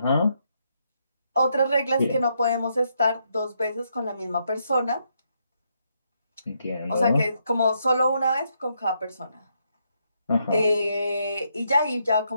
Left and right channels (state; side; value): inverted; both; correlation -0.77